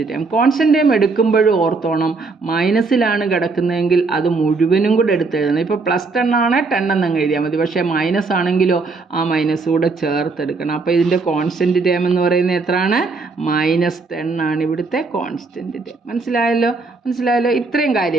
term. Constant term എടുക്കുമ്പോഴും ഓർത്തോണം, മൈനസിലാണ് കിടക്കുന്നതെങ്കിൽ അത് മുഴുവനും കൂടെ എടുത്തെഴുതണം. ഇപ്പോൾ +10 ആണ് 10 എന്നങ്ങ് എഴുതിയാൽ മതി. പക്ഷേ മൈനസ് ആണെങ്കിലോ ആ മൈനസ് കൂടെ ചേർത്തെടുക്കണം. അപ്പോൾ ഇതിൻ്റെ കോൺസ്റ്റൻറ്റ് ടേം എന്ന് പറയുന്നത് എത്രയാണ്? -10 ആണ് ഇവിടുത്തെ കോൺസ്റ്റൻറ്റ് ടേം. മനസ്സിലായല്ലോ. ഇത്രയും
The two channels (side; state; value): left; quieter; 4.0 dB